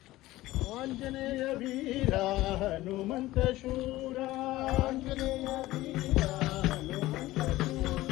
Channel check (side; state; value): right; quieter; 17.2 dB